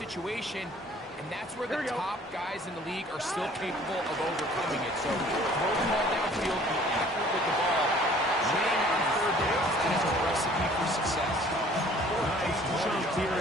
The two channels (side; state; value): both; normal; correlation 0.53